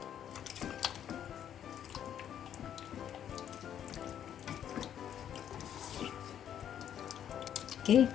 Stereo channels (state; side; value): quieter; right; 9.8 dB